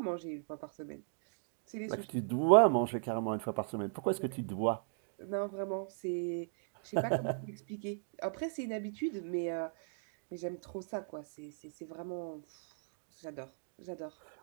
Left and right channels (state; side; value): silent; left; digital silence